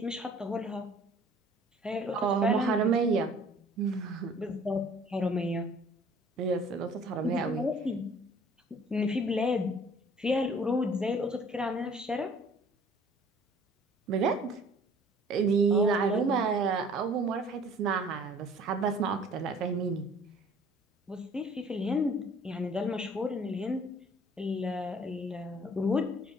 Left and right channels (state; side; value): normal; both; correlation 0.53